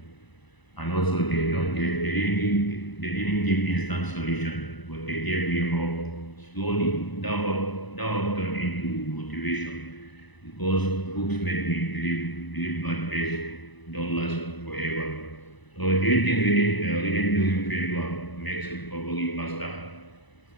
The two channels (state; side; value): late; right; 1.0 ms